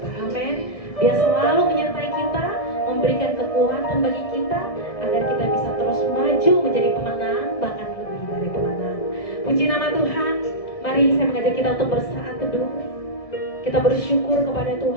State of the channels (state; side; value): late; right; 1.7 ms